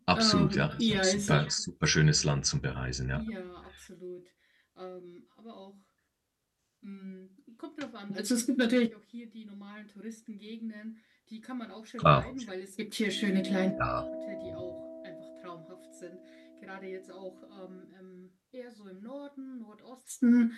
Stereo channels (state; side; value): identical; both; correlation 1.00